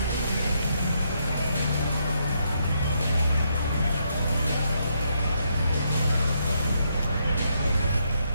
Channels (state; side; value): inverted; both; correlation -0.77